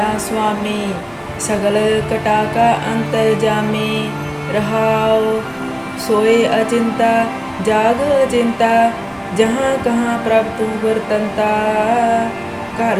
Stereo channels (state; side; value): identical; both; correlation 1.00